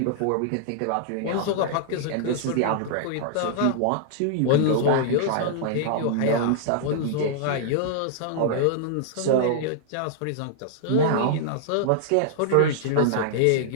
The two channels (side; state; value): both; different; correlation -0.01